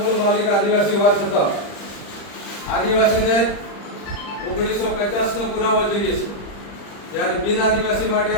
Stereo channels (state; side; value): late; right; 40 ms